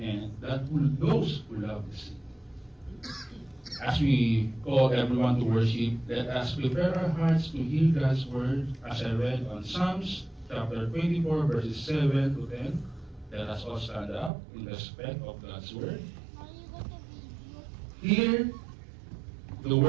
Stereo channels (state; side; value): drops out; left; at 14.3 s